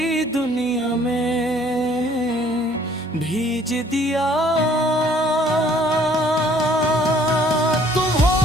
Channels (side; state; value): both; normal; correlation 0.59